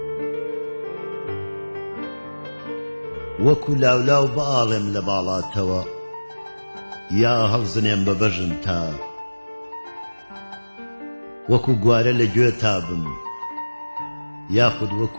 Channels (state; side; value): inverted; both; correlation -1.00